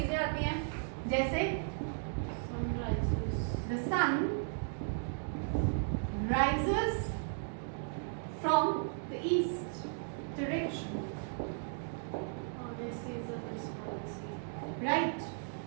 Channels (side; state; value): left; silent; digital silence